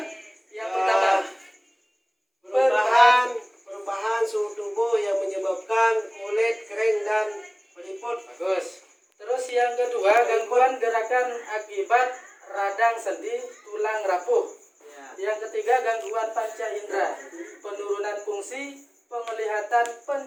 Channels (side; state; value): both; identical; correlation 1.00